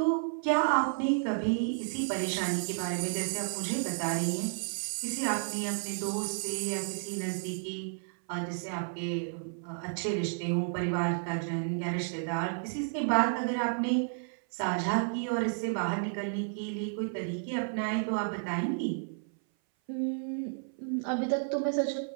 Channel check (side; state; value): left; silent; 57 dB below the other